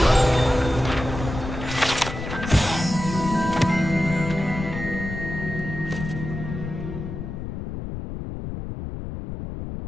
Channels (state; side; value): noise; left; rumble, 7 dB below the sound